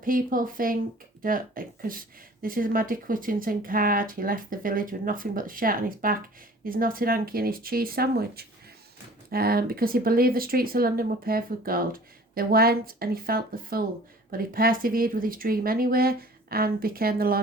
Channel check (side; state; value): both; normal; correlation 0.48